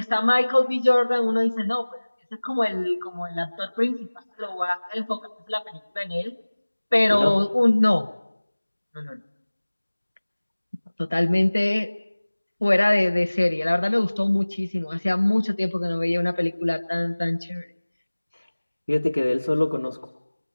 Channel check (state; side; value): inverted; both; correlation -1.00